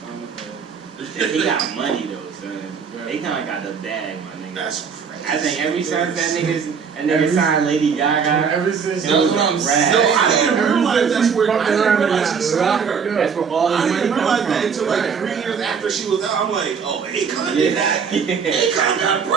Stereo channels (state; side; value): quieter; left; 6.3 dB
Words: forever. he got money though, son. Akon got the bag, my nigga. That's crazy. I think every time that nigga signed Lady Gaga. Ever since That's what I'm saying. No, I didn't realize that's where. I didn't realize she signed her. That's where all I his money didn't realize comes that from. until like 3 years after she was out. I'm like, oh, Akon did that. Akon got